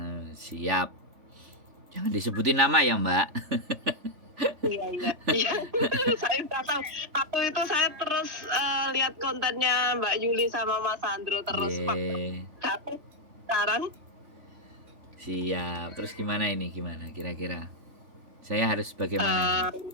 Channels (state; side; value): late; left; 3.4 ms